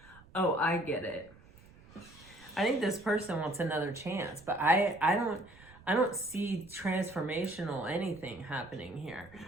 Oh, I get it. I think this person wants another chance, but I don't see transformational anything happening here.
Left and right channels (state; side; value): noise; right; rumble, 23 dB below the sound